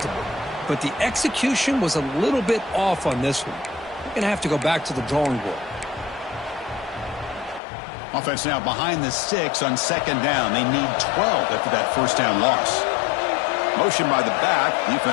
But the execution was a little bit off on this one. We're going to have to go back to the drawing board. Offense now behind the 6 on 2nd down. They need 12 after that first down loss. Motion by the back.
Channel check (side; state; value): right; drops out; at 7.6 s